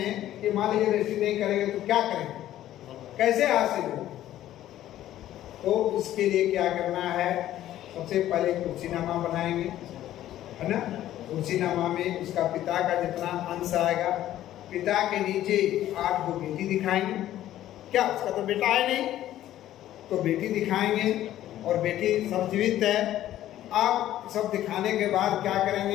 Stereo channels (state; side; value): quieter; right; 13.0 dB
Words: कि मान लीजिए रजिस्ट्री नहीं करेंगे तो क्या करेंगे, कैसे हासिल हो, तो इसके लिए क्या करना है, सबसे पहले कुर्सीनामा बनाएंगे, है ना। कुर्सीनामा में उसका पिता का जितना अंश आएगा, पिता के नीचे 8 बेटी दिखाएंगे, क्या उसका तो बेटा है नहीं, तो बेटी दिखाएंगे और बेटी सब जीवित है। अब सब दिखाने के बाद क्या